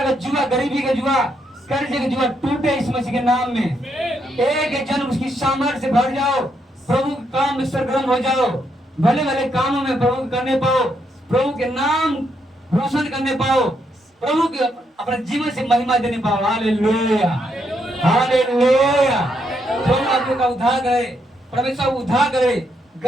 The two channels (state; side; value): normal; both; correlation 0.77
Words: का जुआ, गरीबी का जुआ, कर्जे का जुआ टूटे इस मसीह के नाम में। एक जन्म उसकी सामर्थ्य से भर जाओ, प्रभु के काम में सरगर्म हो जाओ, भले भले कामों में प्रभु करने पाओ, प्रभु के नाम रोशन करने पाओ, प्रभु के अपने जीवन से महिमा देने पाओ। Hallelujah, hallelujah. प्रभु आपका उद्धार करे, परमेश्वर उद्धार करे